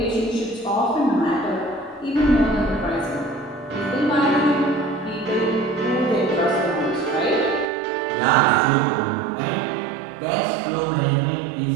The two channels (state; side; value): drops out; left; at 7.7 s